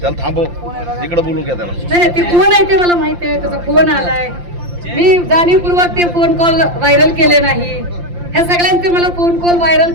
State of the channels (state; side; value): late; left; 5.7 ms